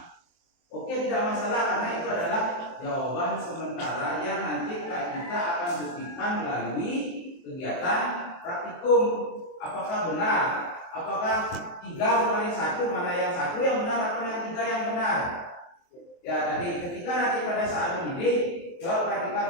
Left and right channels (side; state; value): right; late; 23 ms